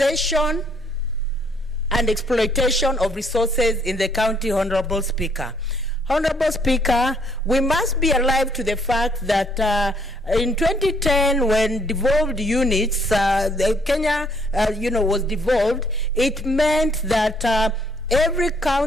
and exploitation of resources in the county. Honorable Speaker. Honorable Speaker, we must be alive to the fact that in 2010, when devolved units, Kenya, was devolved, it meant that every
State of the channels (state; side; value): normal; both; correlation 0.66